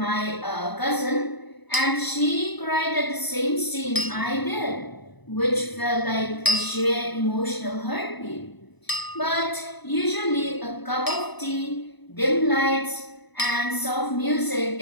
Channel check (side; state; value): right; late; 1.0 ms